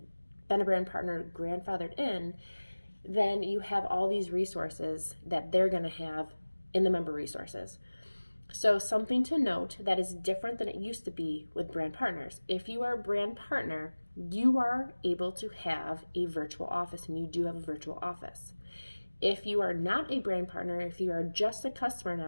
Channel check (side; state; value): both; inverted; correlation -1.00